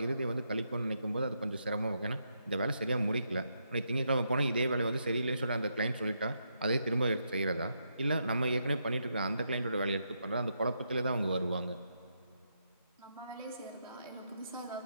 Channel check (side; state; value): both; inverted; correlation -0.80